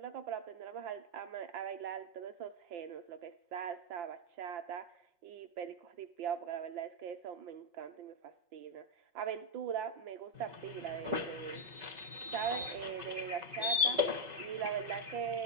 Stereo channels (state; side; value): late; left; 5.3 ms